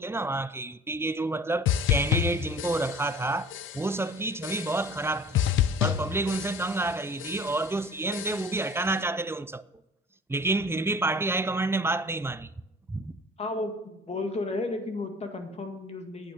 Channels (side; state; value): both; normal; correlation 0.45